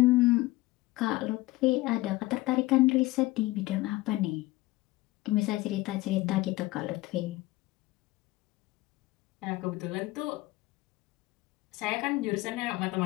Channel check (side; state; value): right; quieter; 19.4 dB